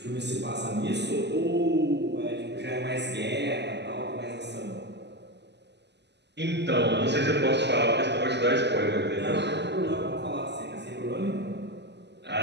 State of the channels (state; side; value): late; left; 0.50 ms